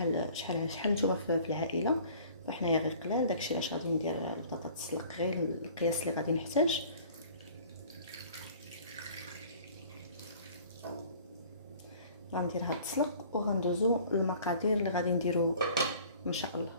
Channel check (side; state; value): both; inverted; correlation -0.50